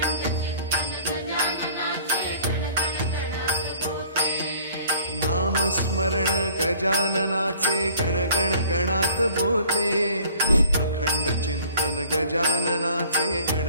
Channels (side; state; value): both; inverted; correlation -0.51